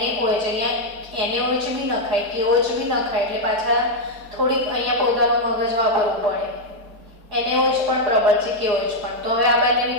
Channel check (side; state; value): left; late; 4.9 ms